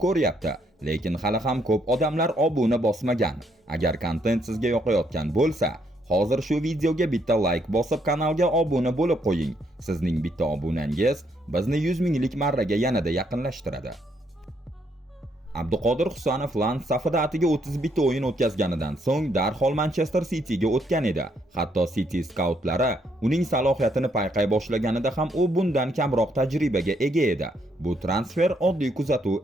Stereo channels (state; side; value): normal; both; correlation 0.73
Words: ko'ryapti, lekin hali ham ko'p odamlar obuna bosmagan. Agar kontent sizga yoqayotgan bo'lsa, hozir shu videoga bitta like bosib kanalga obuna bo'lib qo'ying. Sizning bitta obunangiz bizni 100 minglik marraga yanada yaqinlashtiradi. Abduqodir Husanov Lens safida atiga 31 o'yin o'tkazganidan so'ng darhol Manchester City'ga o'tgan edi. Hatto City skautlari uning salohiyatini payqay boshlaganida ham u bundan kamroq tajribaga ega edi. Bu transfer oddiy